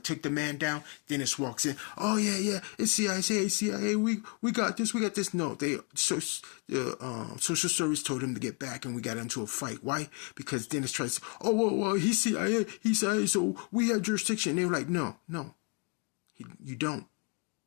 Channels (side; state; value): right; quieter; 33.4 dB